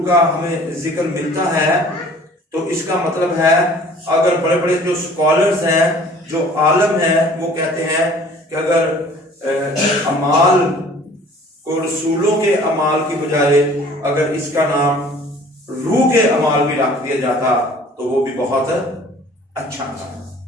का हमें जिक्र मिलता है तो इसका मतलब है, अगर बड़े बड़े जो स्कॉलर्स हैं जो आलम हैं वो कहते हैं कि अगर अमाल को रसूलों के अमाल की बजाय अगर इसका नाम रूह के अमाल भी रख दिया जाता तो वो भी बहुत अच्छा था।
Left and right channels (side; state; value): both; normal; correlation 0.51